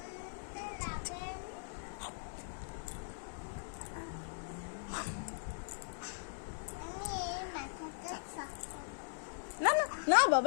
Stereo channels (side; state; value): right; silent; 51 dB below the other